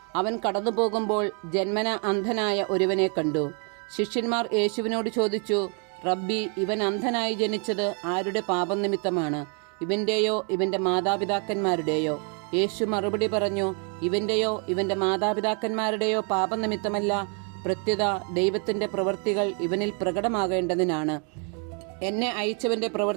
അവൻ കടന്നുപോകുമ്പോൾ ജന്മന അന്ധനായ ഒരുവനെ കണ്ടു. ശിഷ്യന്മാർ യേശുവിനോട് ചോദിച്ചു, റബ്ബി, ഇവൻ അന്ധനായി ജനിച്ചത് ആരുടെ പാപം നിമിത്തമാണ്? ഇവന്റെയോ ഇവന്റെ മാതാപിതാക്കന്മാരുടെയോ? യേശു മറുപടി പറഞ്ഞു, ഇവന്റെയോ ഇവന്റെ മാതാപിതാക്കന്മാരുടെയോ പാപനിമിത്തമല്ല, പ്രത്യുത ദൈവത്തിന്റെ പ്രവൃത്തികൾ ഇവനിൽ പ്രകടമാകേണ്ടതിനാണ്. എന്നെ അയച്ചവന്റെ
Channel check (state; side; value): quieter; left; 38.7 dB